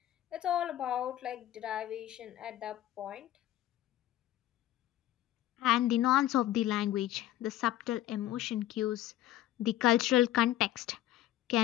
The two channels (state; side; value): quieter; right; 13.6 dB